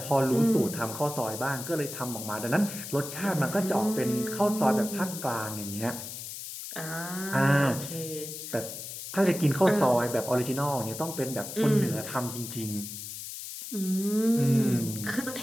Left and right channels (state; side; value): noise; left; hiss, 9 dB below the sound